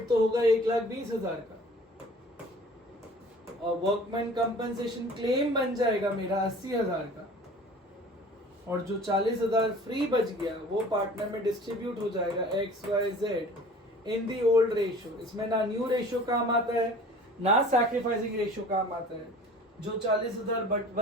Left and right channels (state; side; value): normal; both; correlation 0.45